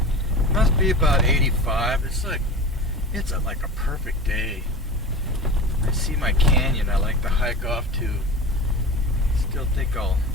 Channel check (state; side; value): normal; both; correlation 0.31